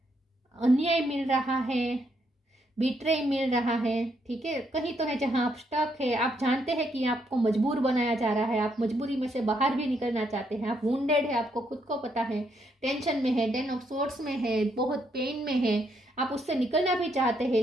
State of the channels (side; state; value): both; normal; correlation 0.75